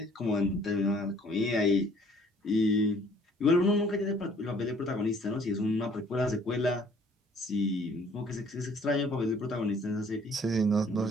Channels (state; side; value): normal; both; correlation 0.58